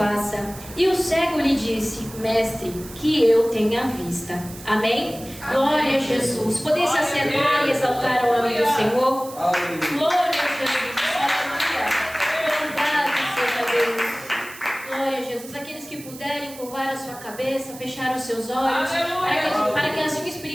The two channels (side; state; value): right; noise; hiss, 16 dB below the sound